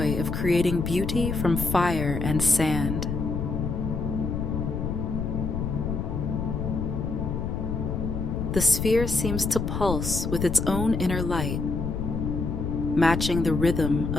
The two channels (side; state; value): left; noise; rumble, 2 dB below the sound